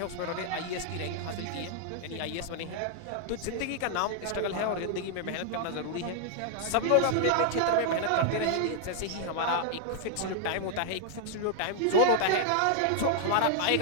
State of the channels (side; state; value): both; different; correlation 0.00